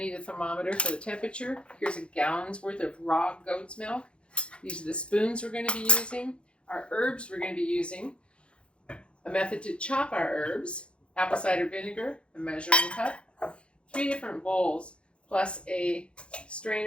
a thermometer for the temperature. Here's a gallon's worth of raw goat's milk. These are the spoons we're going to be using. Our herbs we're going to be using. A method to chop our herbs. Apple cider vinegar, a measuring cup. 3 different bowls, plus a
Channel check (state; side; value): late; right; 0.057 ms